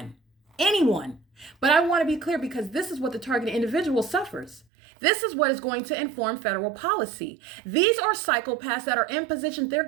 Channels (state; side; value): drops out; left; at 4.7 s